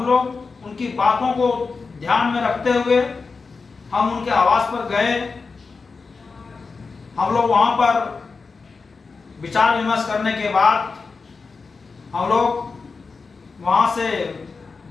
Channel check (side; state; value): right; quieter; 4.5 dB